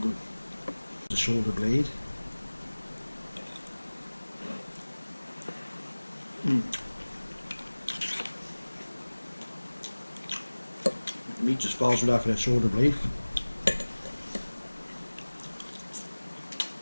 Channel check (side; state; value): both; inverted; correlation -1.00